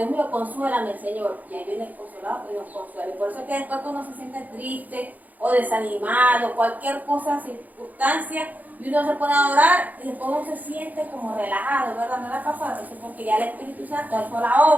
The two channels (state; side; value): late; left; 0.080 ms